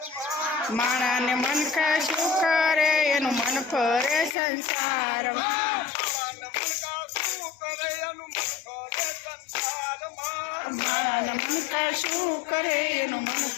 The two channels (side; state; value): right; drops out; at 4.4 s